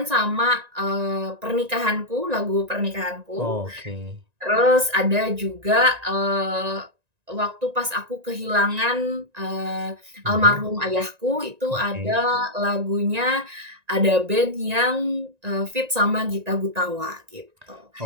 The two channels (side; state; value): left; late; 1.9 ms